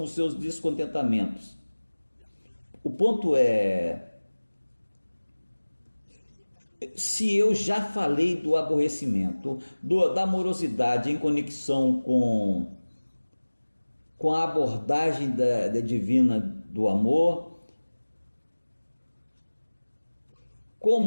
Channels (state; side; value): inverted; both; correlation -1.00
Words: os seus descontentamentos. O ponto é, se eu já falei do aborrecimento, da amorosidade em conexão com a abordagem da divina do amor,